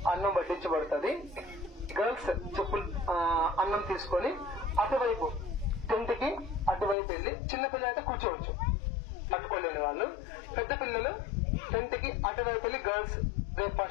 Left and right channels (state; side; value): drops out; right; at 7.0 s